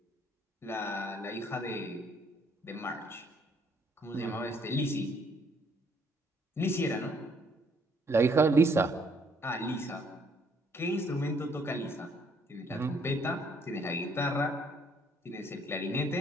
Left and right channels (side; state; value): both; normal; correlation 0.66